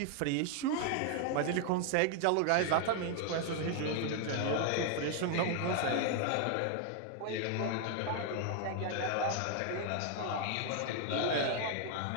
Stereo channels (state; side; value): different; both; correlation 0.00